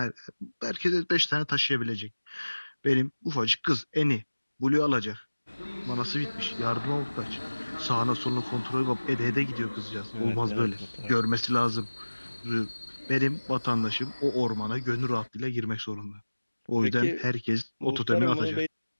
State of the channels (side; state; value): both; inverted; correlation -1.00